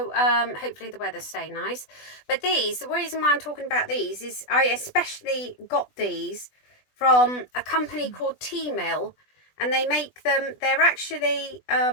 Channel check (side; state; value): right; late; 20 ms